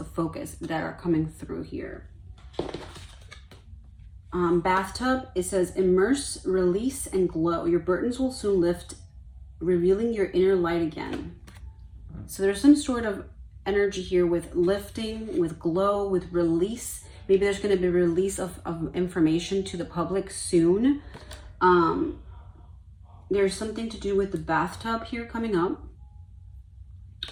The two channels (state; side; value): identical; both; correlation 1.00